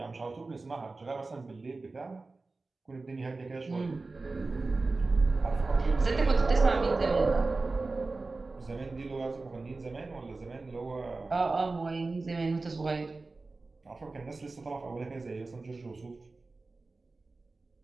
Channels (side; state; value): left; quieter; 3.6 dB